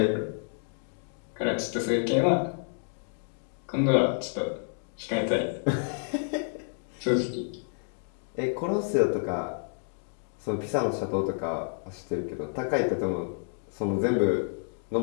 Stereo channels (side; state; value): right; silent; 58 dB below the other